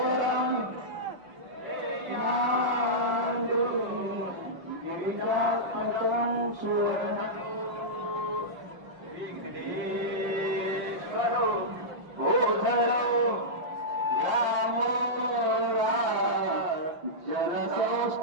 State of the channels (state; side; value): late; left; 5.8 ms